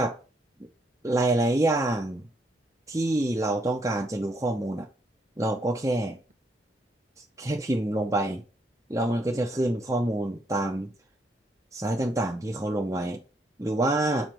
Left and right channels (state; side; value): normal; both; correlation 0.72